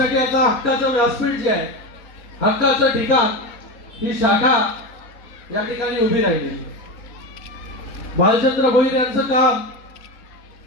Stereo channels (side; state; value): right; late; 4.3 ms